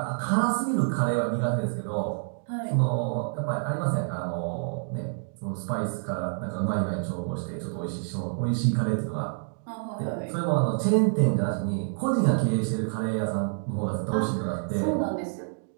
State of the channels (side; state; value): left; silent; digital silence